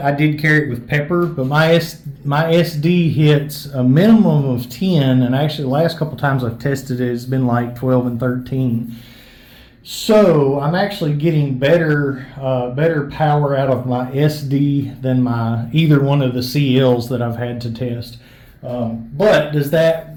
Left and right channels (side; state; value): both; identical; correlation 1.00